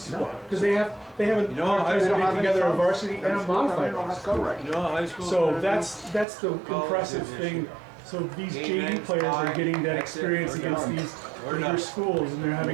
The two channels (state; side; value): drops out; left; at 6.2 s